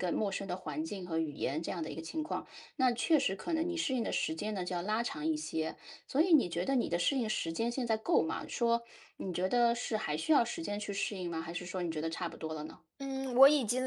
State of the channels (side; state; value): both; identical; correlation 1.00